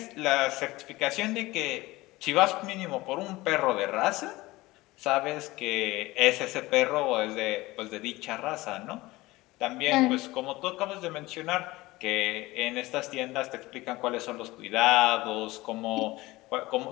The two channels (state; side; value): quieter; right; 19.8 dB